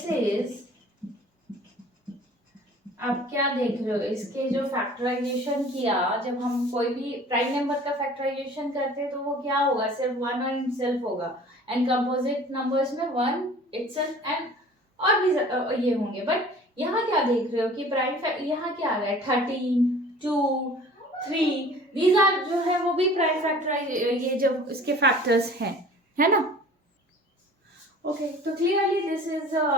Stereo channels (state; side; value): normal; both; correlation 0.47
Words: इज, आप क्या देख रहे हो, इसके जो फैक्टराइजेशन किया, जब हम कोई भी प्राइम नंबर का फैक्टराइजेशन करते हैं तो वो क्या होगा, सिर्फ 1 और इटसेल्फ होगा. एंड कंपोजिट नंबर्स में 1 इटसेल्फ एंड और भी ये होंगे. बट यहाँ क्या देख रहे हो कि प्राइम, यहाँ क्या आ रहा है, 13, 2, 3, दीज आर जो है वो भी प्राइम फैक्टराइज, ये जो इसके फैक्टर्स हैं, है ना. ओके, तो clearly this is